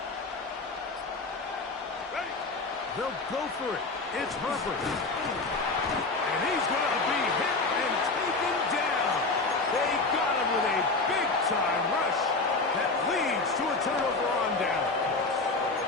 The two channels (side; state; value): right; quieter; 3.6 dB